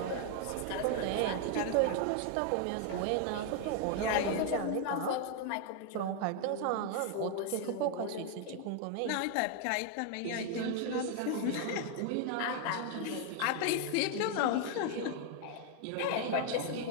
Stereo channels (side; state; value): both; different; correlation 0.00